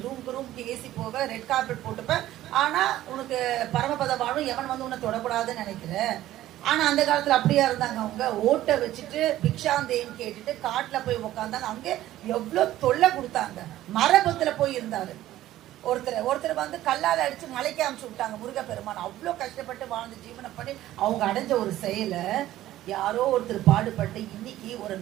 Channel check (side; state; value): left; quieter; 14.2 dB